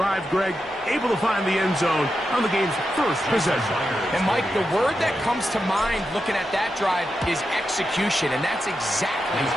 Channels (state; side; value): normal; both; correlation 0.88